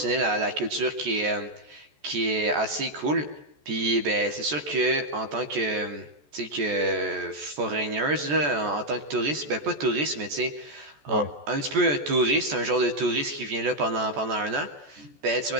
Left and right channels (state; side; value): late; left; 14 ms